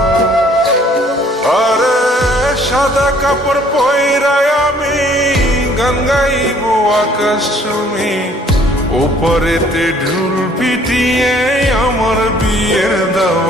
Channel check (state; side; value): normal; both; correlation 0.59